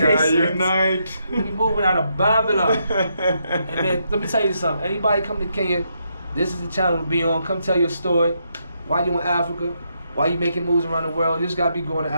unite. We moving out of Babylon. And man, let me tell you something. Anybody come to Kenya, this is the channel to be on. Come tell your story. Why you in Africa? Why you making moves around the world? You just gotta be going to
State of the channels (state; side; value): inverted; both; correlation -0.79